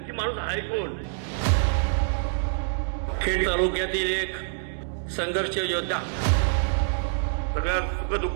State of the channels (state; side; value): silent; left; digital silence